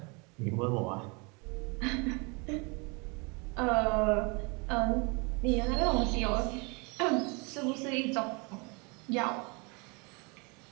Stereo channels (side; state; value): left; quieter; 30.4 dB